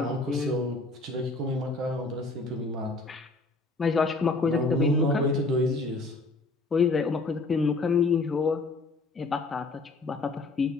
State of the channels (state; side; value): quieter; right; 3.3 dB